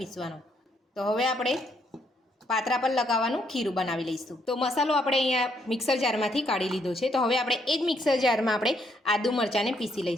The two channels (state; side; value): normal; both; correlation 0.73